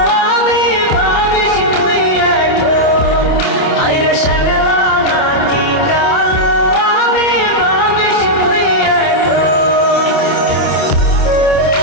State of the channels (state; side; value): late; right; 27 ms